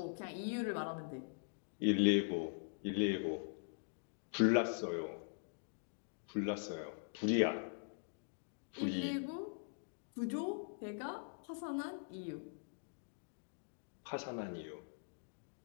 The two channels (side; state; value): right; silent; digital silence